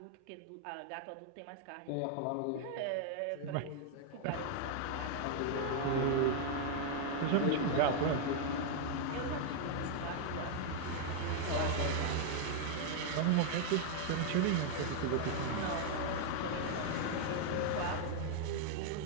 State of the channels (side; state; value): both; different; correlation 0.00